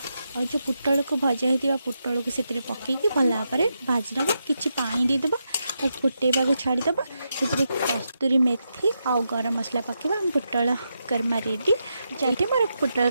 और जो पुटल को भजा होता पुटल को से पकईकी भल भाव भाजी नवा। कि पानी देदेबा और फुटेबा को छाड़ीदेबा। से कस्तूरी मेथी आउ गरम मसला पकेबा। पुटल कर्मा रेडी। चाहिए मोर पुटल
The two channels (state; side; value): inverted; both; correlation -0.85